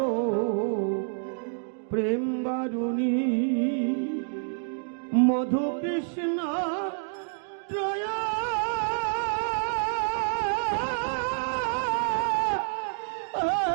প্রেম বারুণী মধু কৃষ্ণ ত্রয়া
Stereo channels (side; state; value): left; silent; digital silence